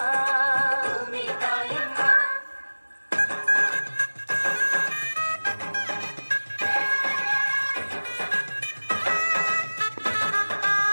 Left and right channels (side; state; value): both; inverted; correlation -1.00